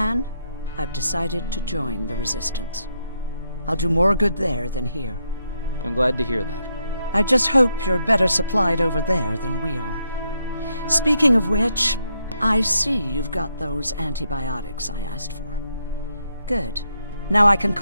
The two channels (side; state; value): both; inverted; correlation -0.80